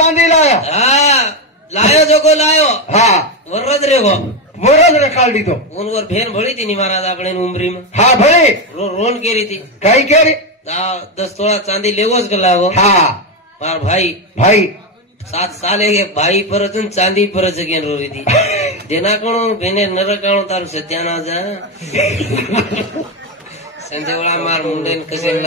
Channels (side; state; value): both; normal; correlation 0.10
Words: लाया लायो जो को लायो हा वरद रे गो वरद रे काढली तो उनवर भेन भळी ती महाराज आपणे उमरी में हा भळी रोन केरी थी काही केरी 10 तोळा चांदी लेवोच गला वो हा मार भाई 7 साले के भाई पर चांदी पर जगेन रोरी थी देना कणो भेने नरकाणो तार सत्याना जा संजयवाळा मार मुंडेन कसे